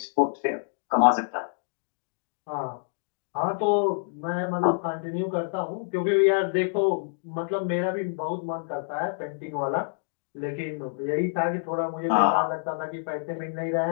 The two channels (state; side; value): silent; right; digital silence